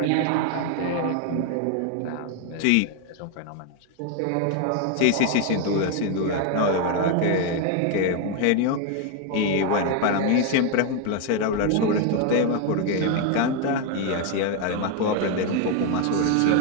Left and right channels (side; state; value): both; different; correlation 0.01